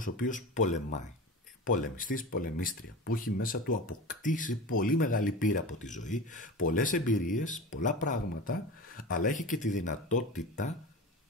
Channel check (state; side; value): normal; both; correlation 0.30